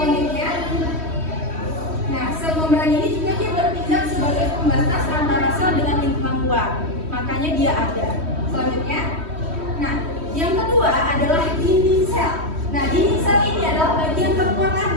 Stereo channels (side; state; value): left; late; 3.1 ms